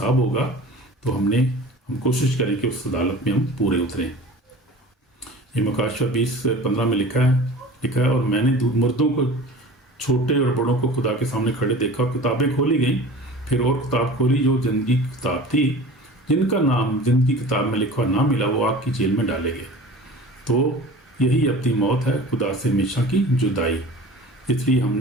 ہوگا تو ہم کوشش کریں کہ اس عدالت میں ہم پورے اتریں. یہ مکاشفہ 20:15 میں لکھا ہے اور میں نے مردوں کو، چھوٹے اور بڑوں کو خدا کے سامنے کھڑے دیکھا، کتابیں کھولی گئیں. پھر اور کتاب کھولی جو زندگی کی کتاب تھی، جن کا نام زندگی کتاب میں لکھا نہ ملا وہ آگ کی جیل میں ڈالے گئے. تو یہی اپنی موت ہے، خدا سے ہمیشہ کی جدائی. اس لیے ہم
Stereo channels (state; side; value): normal; both; correlation 0.39